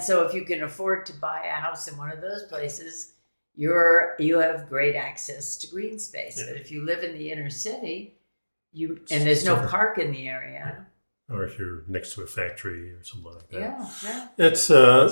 so if you can afford to buy a house in one of those places, you have great access to green space. Yeah. But if you live in the inner city, and there's no park in the area. Yeah. Or if you're next to a factory or something like that. Yeah. It's,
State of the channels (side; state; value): both; inverted; correlation -1.00